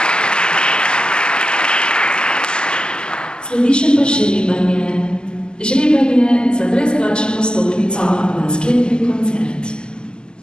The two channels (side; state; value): right; late; 0.047 ms